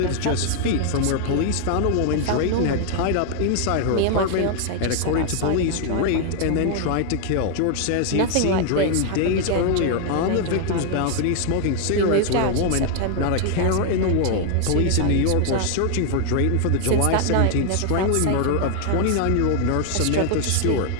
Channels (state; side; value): different; both; correlation 0.00